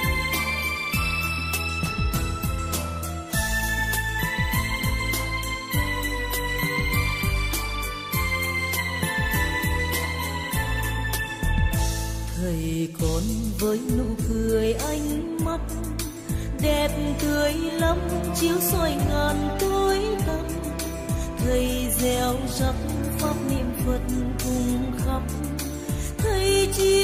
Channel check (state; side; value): identical; both; correlation 1.00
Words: Thầy con với nụ cười ánh mắt đẹp tươi lắm, chiếu soi ngàn tối tăm. Thầy gieo rắc pháp niệm Phật cùng khắp, thầy